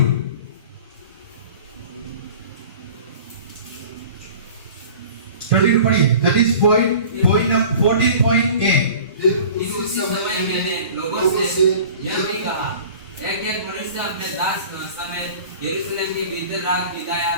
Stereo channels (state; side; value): inverted; both; correlation -0.43